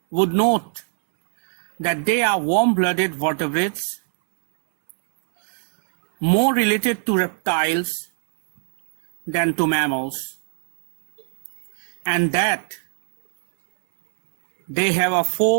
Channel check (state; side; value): silent; left; digital silence